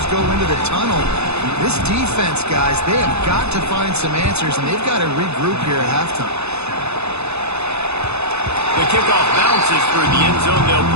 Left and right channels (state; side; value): late; left; 0.80 ms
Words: go into the tunnel. This defense, guys, they have got to find some answers, and they've got to regroup here at halftime. The kickoff bounces through the end zone. They'll